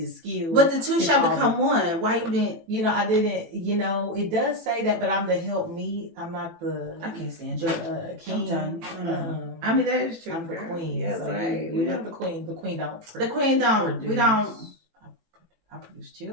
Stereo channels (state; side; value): late; left; 18 ms